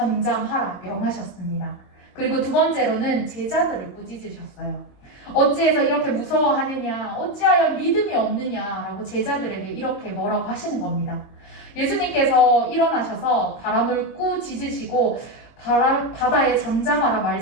명하셨습니다. 그리고 두 번째로는 제자들을 꾸짖으셨어요. 어찌해서 이렇게 무서워하느냐 어찌하여 믿음이 없느냐라고 제자들에게 이렇게 뭐라고 하시는 겁니다. 예수님께서 일어나셔서 바람을 꾸짖으시고 바다에 잠잠하라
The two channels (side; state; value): right; late; 22 ms